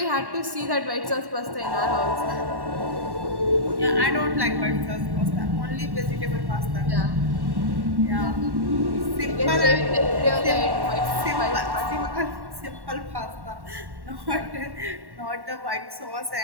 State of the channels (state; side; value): late; left; 1.1 ms